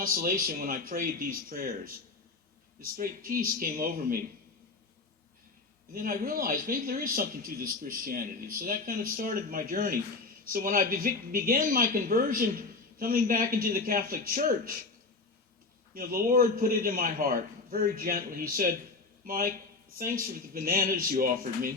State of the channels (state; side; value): quieter; right; 3.8 dB